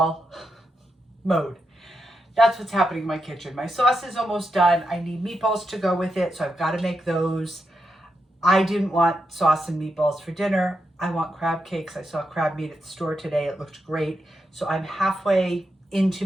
mode. That's what's happening in my kitchen. My sauce is almost done. I need meatballs to go with it, so I've got to make those. I didn't want sauce and meatballs for dinner. I want crab cakes. I saw crab meat at the store today. It looked great. So I'm halfway into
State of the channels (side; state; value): both; normal; correlation 0.85